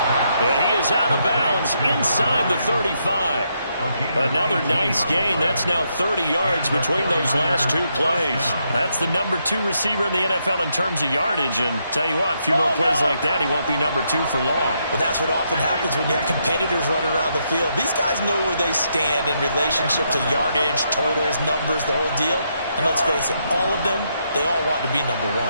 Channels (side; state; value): both; inverted; correlation -0.78